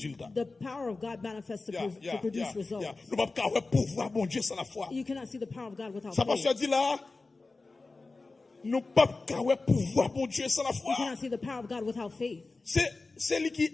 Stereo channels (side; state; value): right; quieter; 3.6 dB